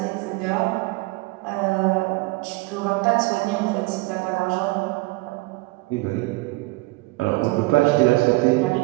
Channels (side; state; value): left; quieter; 23.1 dB